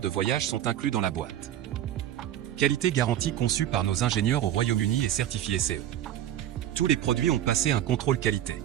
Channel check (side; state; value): left; quieter; 11.6 dB